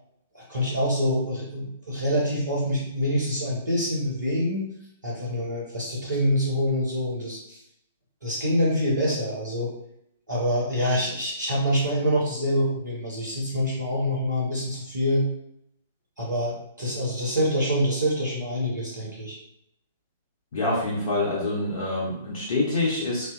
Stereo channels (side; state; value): both; inverted; correlation -0.58